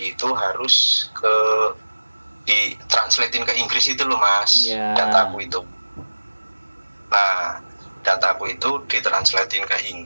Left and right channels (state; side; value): inverted; both; correlation -1.00